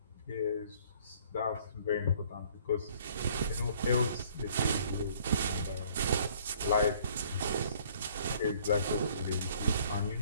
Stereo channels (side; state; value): both; inverted; correlation -0.58